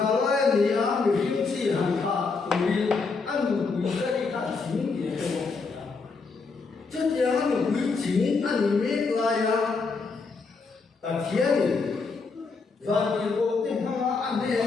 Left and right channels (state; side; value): quieter; right; 4.5 dB